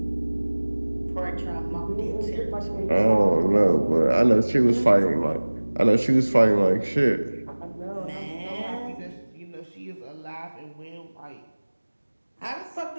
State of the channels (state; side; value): inverted; both; correlation -1.00